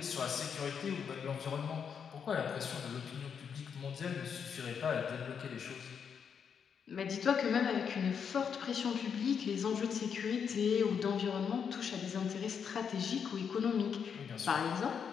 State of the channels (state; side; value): quieter; right; 7.0 dB